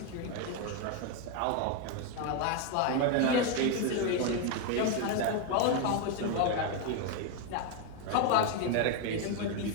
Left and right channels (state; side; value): different; both; correlation 0.02